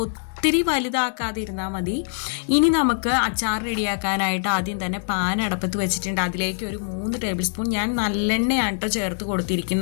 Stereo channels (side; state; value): right; silent; digital silence